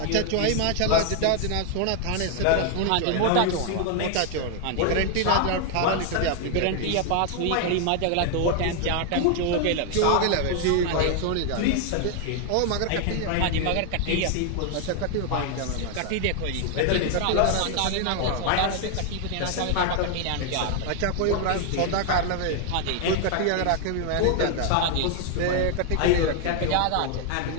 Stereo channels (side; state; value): both; different; correlation 0.00